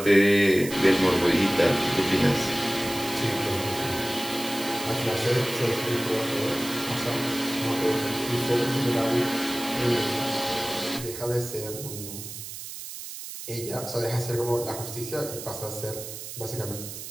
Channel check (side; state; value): right; noise; hiss, 10 dB below the sound